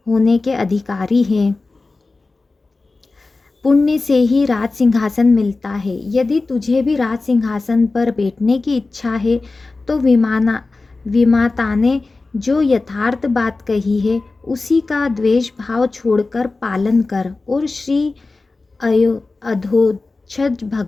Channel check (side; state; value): right; quieter; 3.6 dB